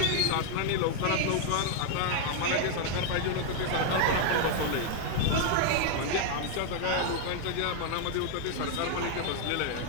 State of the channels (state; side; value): different; both; correlation 0.00